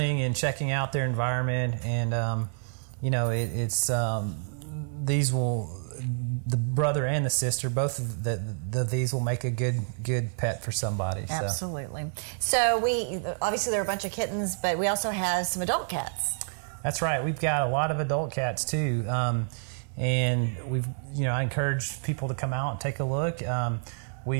and checking out their environment, and the brother and the sister, both of these will make a good pet for somebody. So. Absolutely. So obviously there are a bunch of kittens, but we also have some adult cats. That's right. We've got a lot of adult cats too, and I encourage people to come out and take a look.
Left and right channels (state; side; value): silent; left; digital silence